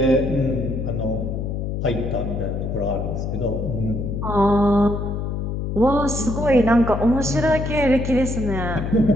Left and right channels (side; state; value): left; noise; hum, 3 dB below the sound